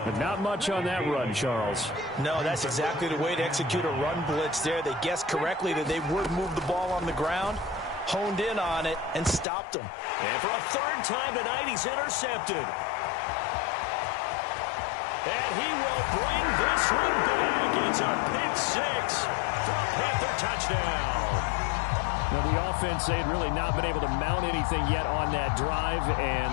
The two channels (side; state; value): right; drops out; at 9.5 s